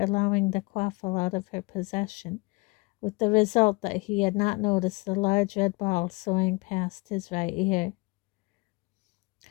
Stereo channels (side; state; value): right; quieter; 26.3 dB